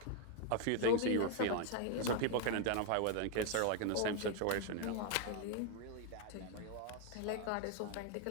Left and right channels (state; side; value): different; both; correlation 0.01